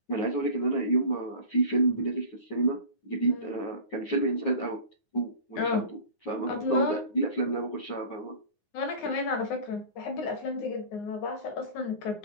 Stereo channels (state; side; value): late; right; 9.6 ms